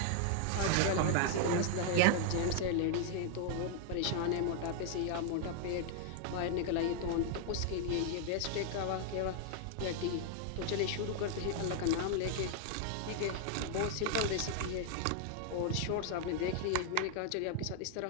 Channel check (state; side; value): different; both; correlation 0.00